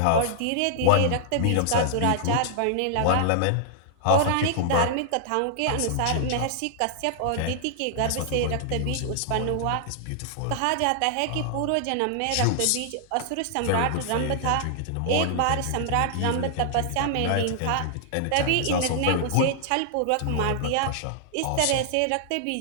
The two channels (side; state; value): both; different; correlation -0.01